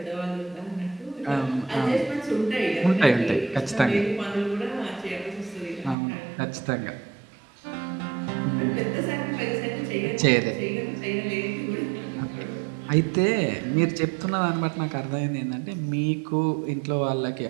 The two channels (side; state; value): left; drops out; at 6.0 s